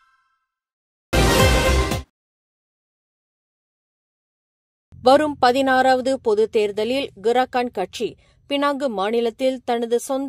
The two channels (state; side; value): identical; both; correlation 1.00